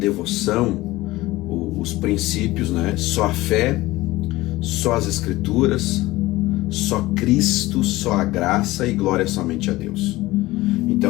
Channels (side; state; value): right; quieter; 18.6 dB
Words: os princípios, né? Só a fé, só as escrituras, só Cristo, só a graça e glória somente a Deus.